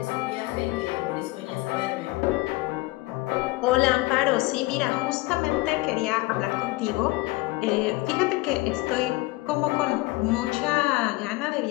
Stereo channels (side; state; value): right; quieter; 21.7 dB